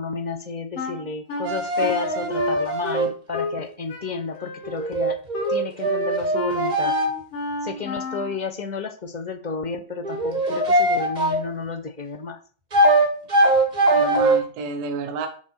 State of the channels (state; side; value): late; left; 2.1 ms